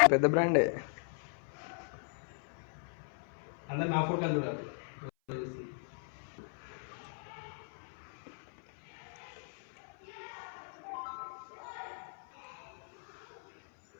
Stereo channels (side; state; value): right; silent; 53 dB below the other